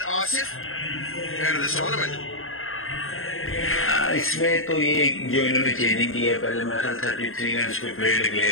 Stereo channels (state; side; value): late; right; 0.60 ms